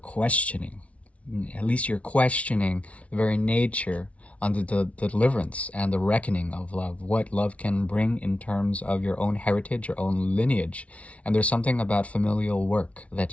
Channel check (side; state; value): right; late; 0.064 ms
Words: at least you're questioning the very nature on the deliverance and the reckoning of love, what love can bring in terms of your own heritage, your own lineage. And there's something about familial work